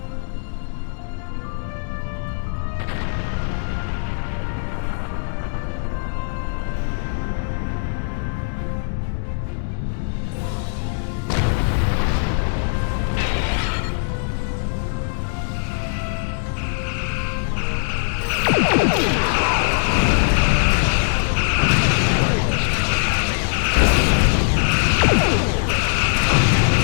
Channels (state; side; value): silent; right; digital silence